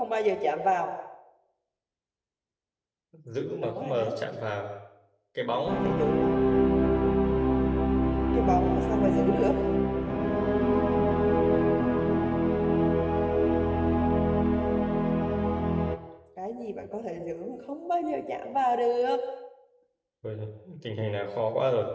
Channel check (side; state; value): both; identical; correlation 1.00